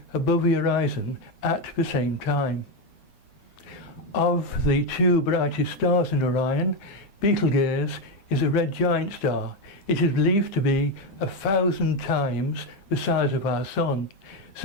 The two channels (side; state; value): right; late; 9.9 ms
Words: above the horizon at the same time. Of the 2 brightest stars in Orion, Betelgeuse is a red giant star. It is believed to be 1,000 times the size of our Sun,